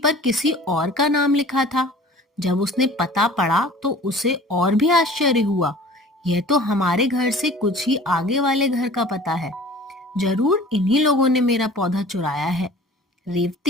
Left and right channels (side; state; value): both; normal; correlation 0.45